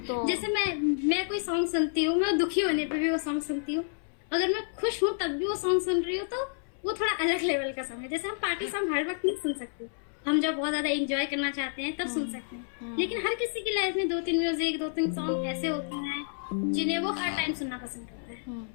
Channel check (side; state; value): right; silent; 58 dB below the other